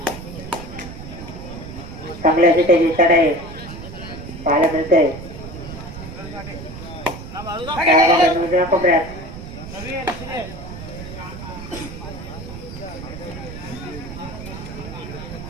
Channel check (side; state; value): right; noise; rumble, 11 dB below the sound